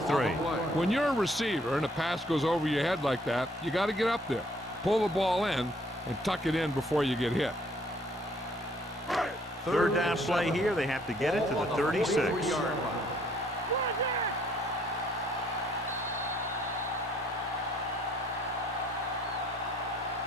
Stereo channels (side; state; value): both; normal; correlation 0.64